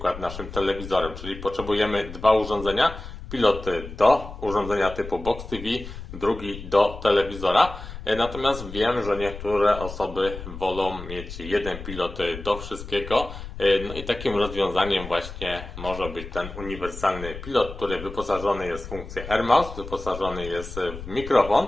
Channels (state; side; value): noise; left; rumble, 11 dB below the sound